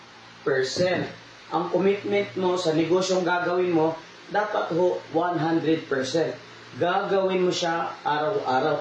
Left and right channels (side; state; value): both; identical; correlation 1.00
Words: Ang commitment mo sa negosyong gagawin mo, dapat ho 100%. Gagawin mo siya